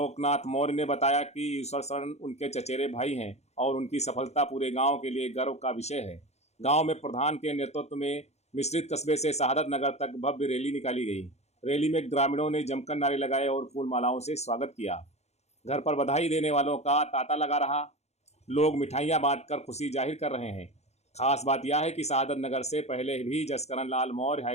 मौर्य ने बताया कि यूसर शरण उनके चचेरे भाई हैं और उनकी सफलता पूरे गांव के लिए गर्व का विषय है। गांव में प्रधान के नेतृत्व में मिश्रित कस्बे से शहादत नगर तक भव्य रैली निकाली गई। रैली में ग्रामीणों ने जमकर नारे लगाए और फूल मालाओं से स्वागत किया। घर पर बधाई देने वालों का तांता लगा रहा। लोग मिठाइयां बांटकर खुशी जाहिर कर रहे हैं। खास बात यह है कि शहादत नगर से पहले भी जसकरण लाल मौर्य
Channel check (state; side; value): late; right; 0.32 ms